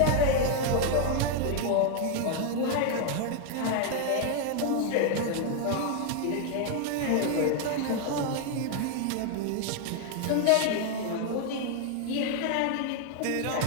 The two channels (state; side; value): different; both; correlation 0.00